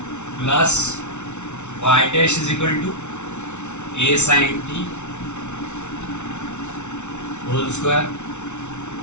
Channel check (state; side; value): late; right; 0.83 ms